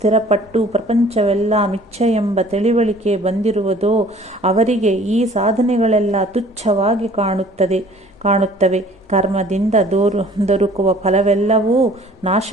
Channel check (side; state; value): both; normal; correlation 0.52